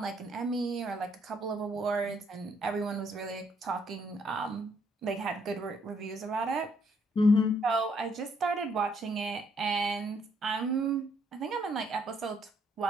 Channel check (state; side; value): normal; both; correlation 0.70